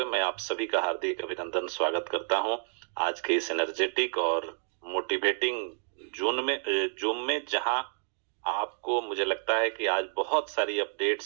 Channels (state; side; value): silent; left; 58 dB below the other